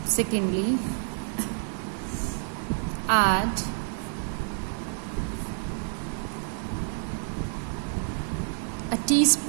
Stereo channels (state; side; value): silent; left; 59 dB below the other